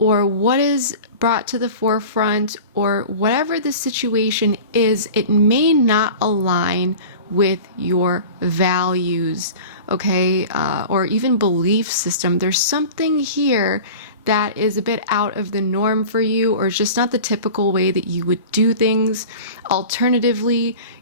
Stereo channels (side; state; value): both; inverted; correlation -0.36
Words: what is brought to the forefront, or whatever the situation is, it may not align with your values, okay, or even belief system. There's something here that is a bit out of the norm for you, or just not the typical way that you would do things. Alternatively,